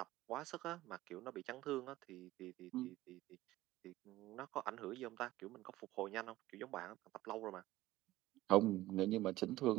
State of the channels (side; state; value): left; quieter; 16.7 dB